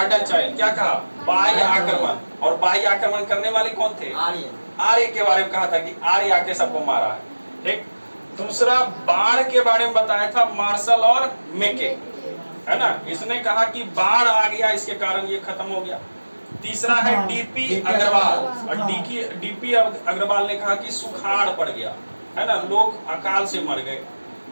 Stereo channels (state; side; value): inverted; both; correlation -1.00